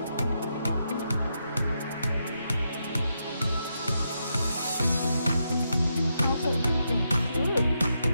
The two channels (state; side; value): inverted; both; correlation -0.83